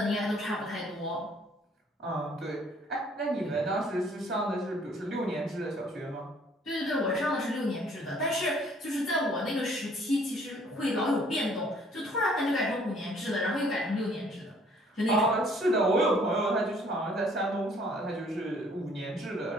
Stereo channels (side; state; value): both; normal; correlation 0.59